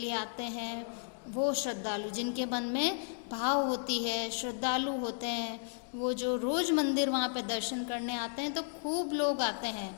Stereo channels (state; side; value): silent; right; digital silence